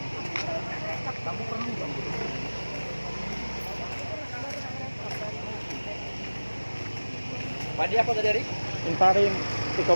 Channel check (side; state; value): both; inverted; correlation -1.00